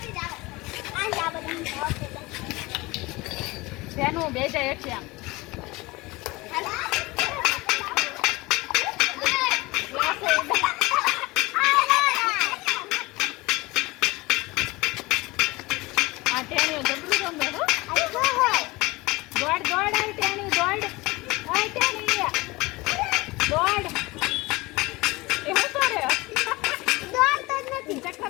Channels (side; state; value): right; quieter; 22.2 dB